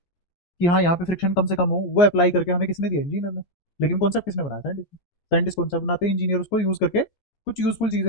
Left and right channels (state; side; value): late; right; 14 ms